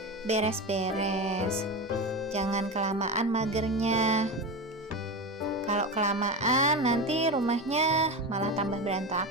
beres-beres. Jangan kelamaan magernya. Kalau kelamaan nanti rumahnya malah tambah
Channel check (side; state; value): both; normal; correlation 0.22